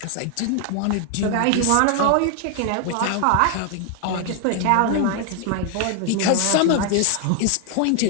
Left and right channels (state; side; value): different; both; correlation 0.00